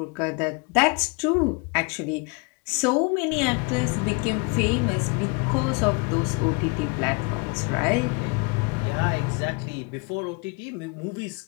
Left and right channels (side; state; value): right; quieter; 30.5 dB